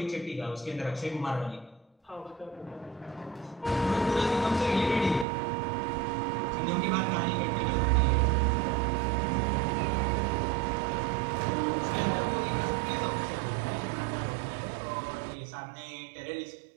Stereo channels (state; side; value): drops out; left; at 5.2 s